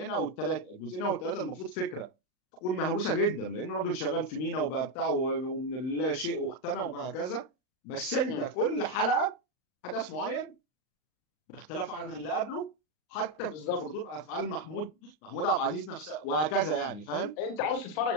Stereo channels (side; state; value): right; late; 39 ms